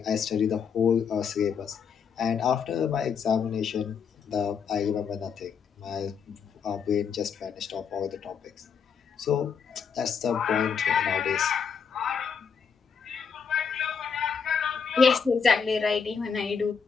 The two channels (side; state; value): right; quieter; 6.4 dB